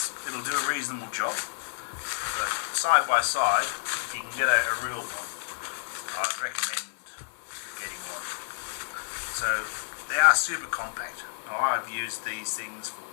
do a reasonable job, but side by side, if you can get a real one, I'd recommend getting one. So they are super compact. Now I've used these things for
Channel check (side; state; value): right; silent; 57 dB below the other